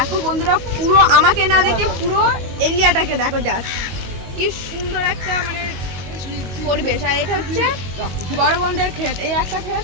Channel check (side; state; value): left; late; 22 ms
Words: বন্ধুরা, পুরো আমাকে না দেখে পুরো এরিয়াটাকে দেখো, জাস্ট কি সুন্দর একটা মানে পরিবেশ। আর এটা হচ্ছে বড় বোনদের ক্ষেত, এই একটা